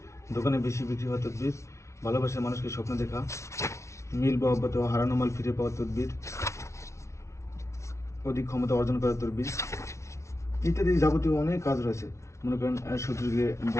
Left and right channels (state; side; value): late; right; 0.14 ms